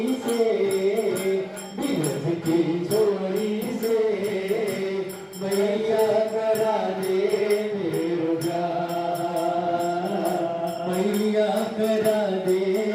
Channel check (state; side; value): identical; both; correlation 1.00